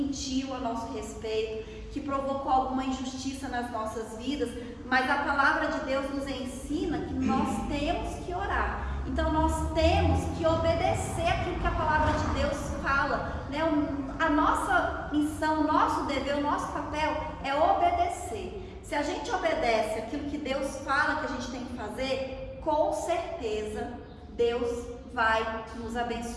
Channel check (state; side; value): identical; both; correlation 1.00